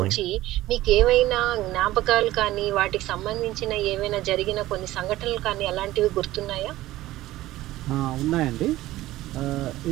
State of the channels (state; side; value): quieter; left; 16.2 dB